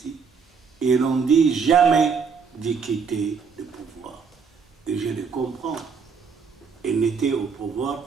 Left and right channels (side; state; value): left; quieter; 5.8 dB